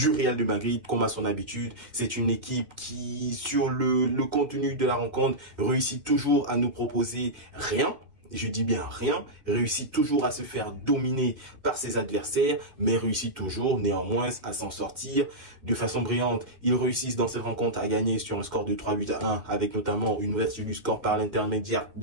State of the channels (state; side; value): late; left; 1.7 ms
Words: Real de Madrid comme à son habitude. C'est une équipe qui, sur le contenu de la rencontre, réussit toujours à nous proposer rien. Je dis bien rien, réussit toujours à se faire dominer par ses adversaires, mais réussit toujours néanmoins à s'en sortir de façon brillante. Ils réussissent dans cette rencontre à gagner sur un score de 3-8-1 avec notamment une ouverture du score par l'intermédiaire